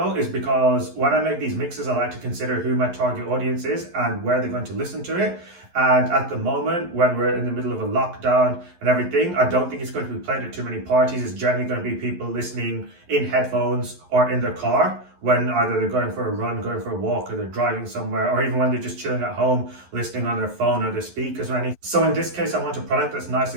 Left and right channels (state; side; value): late; left; 11 ms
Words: is because when I make these mixes, I like to consider who my target audience is and where they're going to listen to it. And at the moment, when we're in the middle of a lockdown and everything, I don't think it's going to be played at too many parties. It's generally going to be people listening in headphones or in their car when either they're going for a run, going for a walk, or they're driving somewhere, or even when they're just chilling at home, listening on their phone or their speakers or anything. So in this case, I want a product that's nice